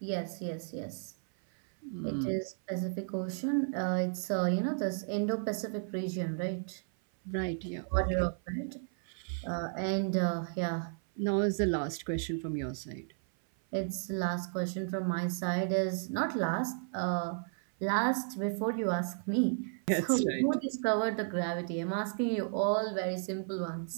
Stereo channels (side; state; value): left; silent; 55 dB below the other